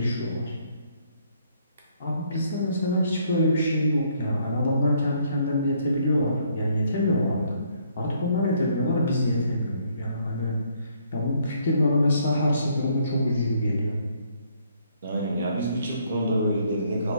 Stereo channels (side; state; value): both; inverted; correlation -0.67